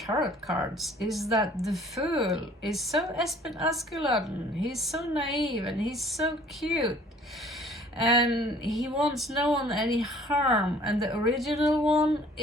cards is that the Fool is so Espen Askeladden. He's so naive and he's so cute. And he wants no one any harm. And the original one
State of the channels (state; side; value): normal; both; correlation 0.54